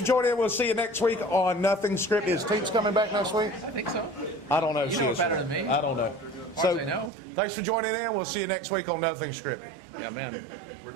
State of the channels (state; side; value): drops out; left; at 7.1 s